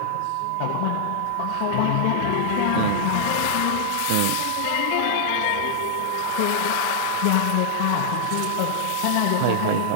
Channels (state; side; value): different; both; correlation -0.01